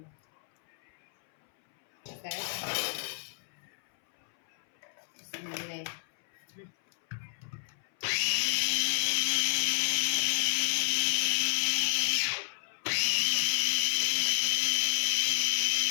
بتاعتها. بسم الله.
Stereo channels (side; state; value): right; silent; 57 dB below the other